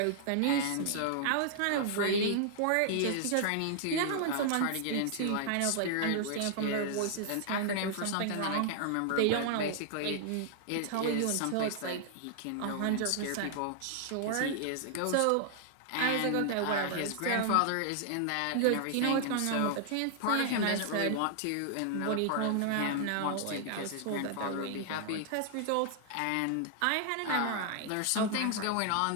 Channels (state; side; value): different; both; correlation -0.01